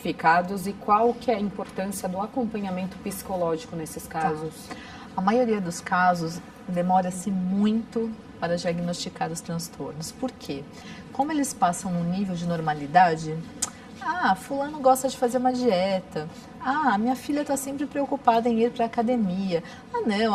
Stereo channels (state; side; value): identical; both; correlation 1.00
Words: e qual que é a importância do acompanhamento psicológico nesses casos? A maioria dos casos demora-se muito para diagnosticar os transtornos. Por quê? Como eles passam num nível de normalidade, fulano gosta de fazer uma dieta. Minha filha está sempre preocupada em ir para a academia. Não,